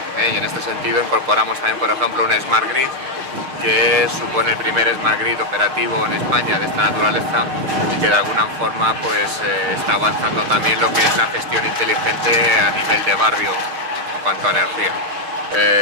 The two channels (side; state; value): left; late; 6.6 ms